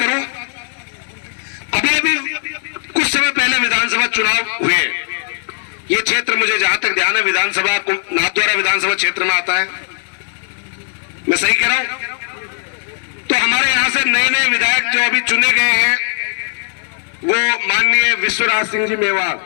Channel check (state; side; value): silent; right; digital silence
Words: अभी कुछ समय पहले विधानसभा चुनाव हुए, ये क्षेत्र मुझे जहां तक ध्यान है विधानसभा नाथद्वारा विधानसभा क्षेत्र में आता है, मैं सही कह रहा हूं? तो हमारे यहां से नए नए विधायक जो अभी चुने गए हैं वो माननीय विश्वराज सिंह जी मेवाड़।